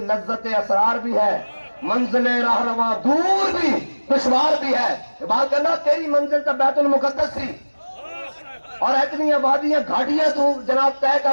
لذت اسرار بھی ہے. منزل راہنما دور بھی دشوار بھی ہے. اقبال کہنا تیری منزل تو بیت المقدس سی اور اتنی آبادیاں گھاٹیاں تو جناب طے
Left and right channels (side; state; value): both; inverted; correlation -1.00